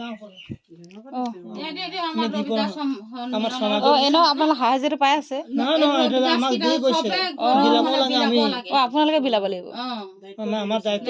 পৰা আপোনালোকে সাহায্যটো পাই আছে আপোনালোকে বিলাব লাগিব আমাৰ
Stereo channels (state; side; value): identical; both; correlation 1.00